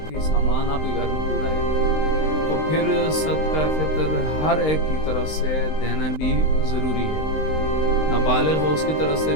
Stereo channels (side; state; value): right; late; 19 ms